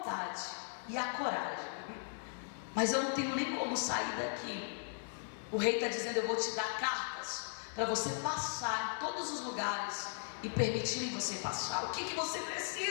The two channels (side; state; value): right; silent; 53 dB below the other